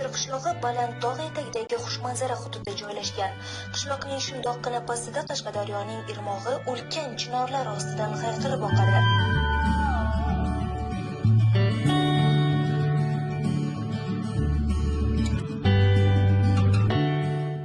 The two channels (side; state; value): both; identical; correlation 1.00